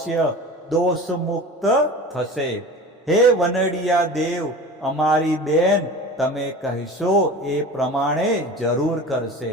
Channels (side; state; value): both; normal; correlation 0.36